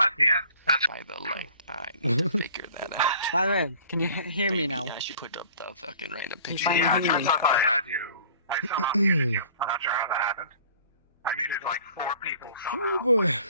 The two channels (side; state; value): both; inverted; correlation -0.49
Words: the end. That's by the light. I need to figure that out. By the way, can you hear me now? I should put up the fucking random You picture. finally yeah, hear turns me. out I had you. I somehow muted you. I'm not sure how that happened. I muted like 4 people somehow. Oh boy.